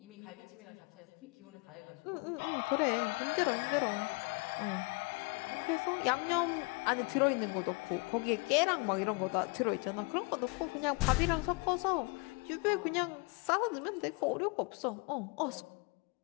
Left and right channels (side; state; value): right; quieter; 29.7 dB